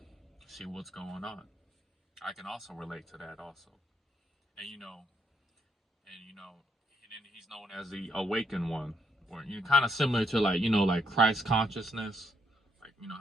see what's going on. I can also relate to that also. And and then he's known as the awakened one, or kind of similar to like like Christ consciousness, like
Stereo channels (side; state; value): both; normal; correlation 0.75